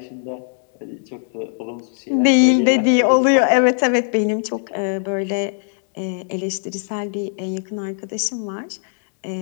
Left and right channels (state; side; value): silent; right; digital silence